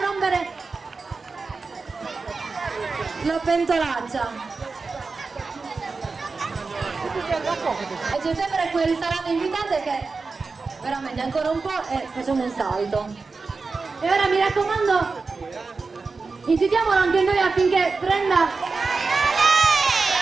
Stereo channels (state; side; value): quieter; left; 4.2 dB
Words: rompere la pentolaccia. E c'è sempre quel salame invitante che veramente ancora un po' e facciamo un salto. E ora mi raccomando, incitiamolo anche noi affinché prenda